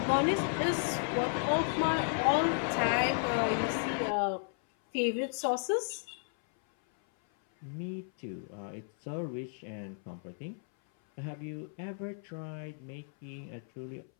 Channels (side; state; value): right; silent; 55 dB below the other